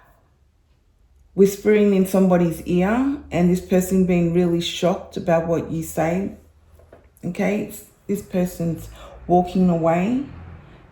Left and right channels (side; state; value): both; identical; correlation 1.00